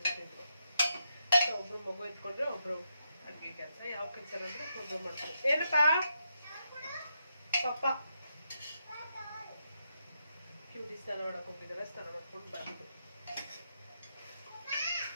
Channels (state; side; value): inverted; both; correlation -0.82